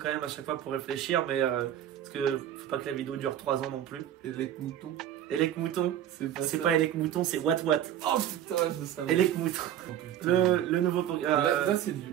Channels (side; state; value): left; quieter; 10.9 dB